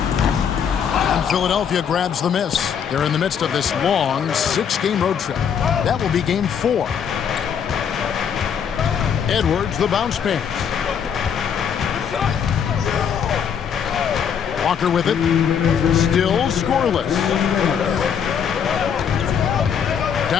Philadelphia grabs the miss. They're in the midst of this long 6-game road trip. That will be game 4. Edwards, the bounce pass. Walker with it. Still scoreless.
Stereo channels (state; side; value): quieter; right; 7.7 dB